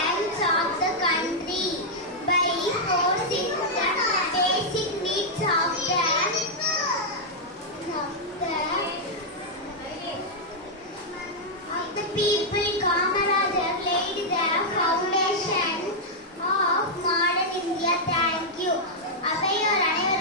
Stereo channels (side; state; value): both; normal; correlation -0.05